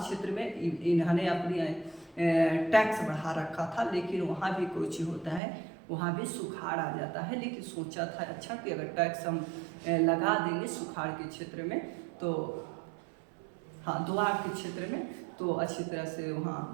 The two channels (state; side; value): drops out; left; at 5.4 s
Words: क्षेत्र में इन्होंने अपनी टैक्स बढ़ा रखा था, लेकिन वहाँ भी कुछ होता है, वहाँ भी सुखाड़ आ जाता है। लेकिन सोचा था अच्छा कि अगर टैक्स हम लगा देंगे सुखाड़ के क्षेत्र में, तो हाँ दोआब के क्षेत्र में, तो अच्छी तरह से